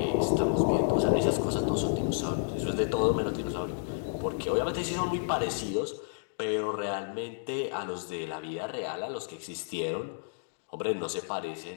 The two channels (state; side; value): silent; right; digital silence